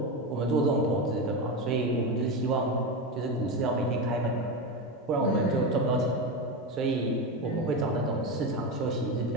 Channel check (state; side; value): normal; both; correlation 0.17